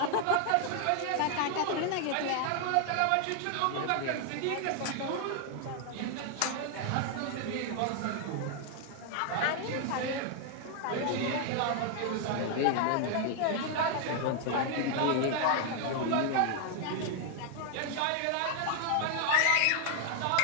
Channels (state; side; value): different; both; correlation 0.00